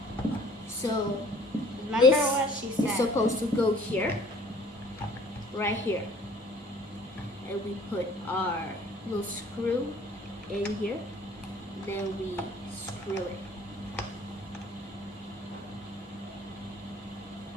So Remember this what she is said. supposed to go here, right here. And we put our little screw in here. Then we screw it.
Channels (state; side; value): normal; both; correlation 0.53